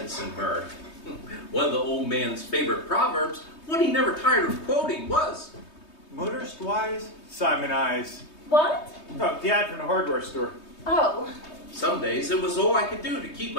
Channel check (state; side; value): late; right; 3.2 ms